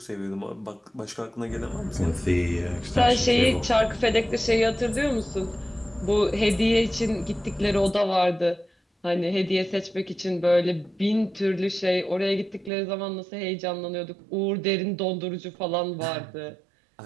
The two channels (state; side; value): drops out; left; at 12.7 s